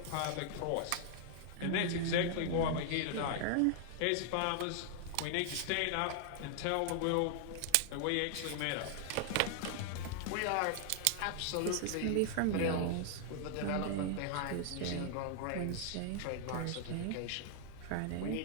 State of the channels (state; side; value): different; both; correlation 0.00